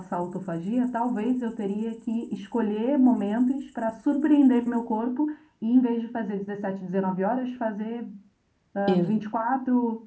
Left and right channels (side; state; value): both; identical; correlation 1.00